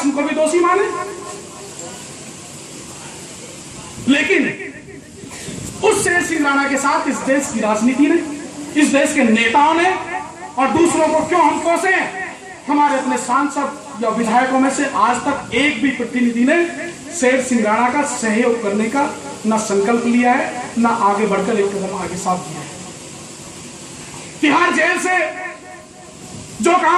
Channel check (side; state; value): both; identical; correlation 1.00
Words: को भी दोषी माने। लेकिन उस शेर सिंह राणा के साथ इस देश की राजनीति ने, इस देश के नेताओं ने और दूसरों को क्यों हम कोसे? हमारे अपने सांसद या विधायकों में से आज तक एक भी प्रतिनिधि ने शेर सिंह राणा का सहयोग करने का न संकल्प लिया है, न आगे बढ़कर एक कदम आगे साथ दिया है। तिहाड़ जेल से जो